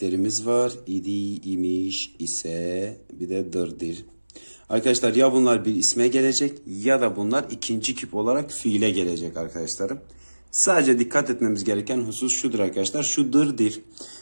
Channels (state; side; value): inverted; both; correlation -1.00